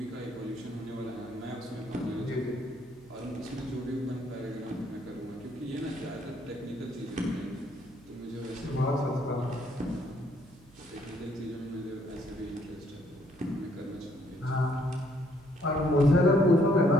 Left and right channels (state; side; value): noise; right; hum, 25 dB below the sound